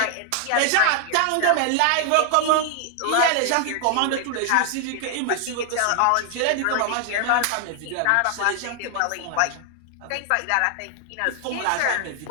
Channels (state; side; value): different; both; correlation 0.00